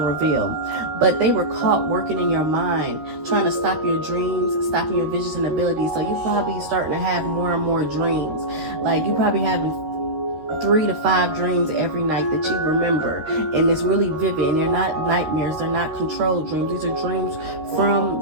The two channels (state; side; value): late; left; 13 ms